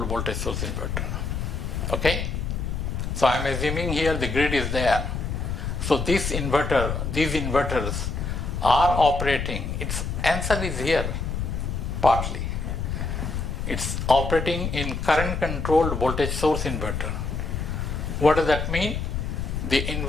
voltage source inverter. Okay? So I am assuming here the grid is there. So these inverters are operating. Its answer is here, partly. It's operating in current controlled voltage source inverter. What does that mean? The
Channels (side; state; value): left; noise; rumble, 3 dB below the sound